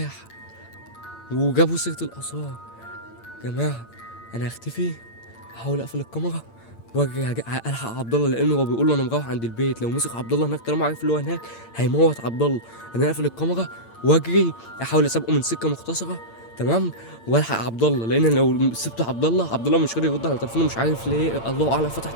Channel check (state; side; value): late; right; 8.8 ms